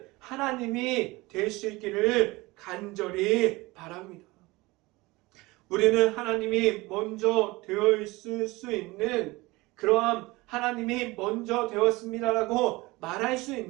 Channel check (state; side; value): quieter; left; 21.8 dB